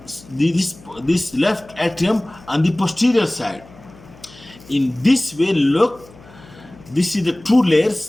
left atrium on the posterior side. In this way, look, this is the two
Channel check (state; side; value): noise; left; hum, 23 dB below the sound